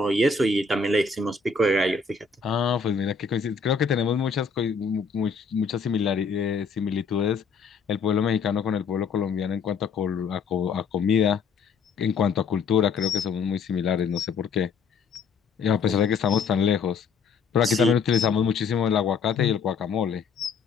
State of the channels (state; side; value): quieter; right; 5.3 dB